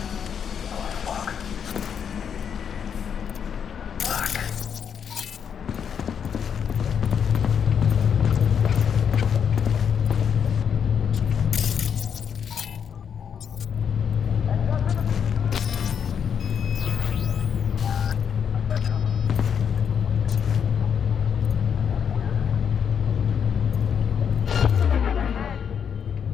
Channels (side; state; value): right; quieter; 7.6 dB